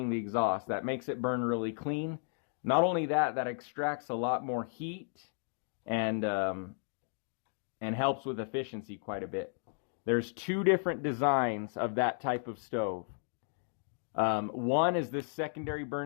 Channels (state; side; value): silent; right; 55 dB below the other